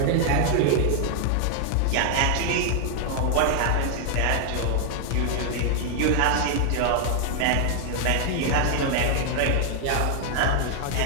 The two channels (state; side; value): different; both; correlation 0.00